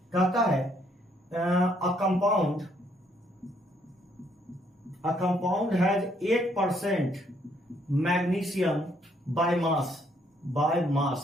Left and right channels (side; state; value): both; normal; correlation 0.69